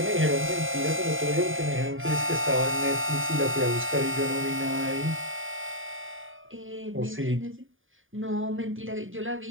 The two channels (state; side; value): late; left; 0.58 ms